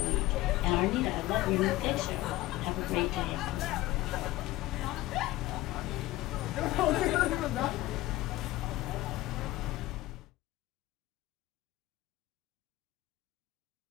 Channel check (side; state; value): right; quieter; 17.5 dB